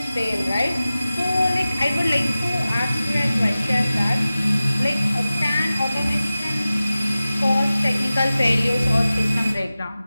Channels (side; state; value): both; inverted; correlation -0.96